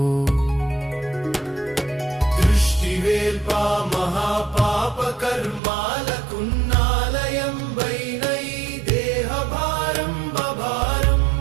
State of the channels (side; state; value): left; drops out; at 5.6 s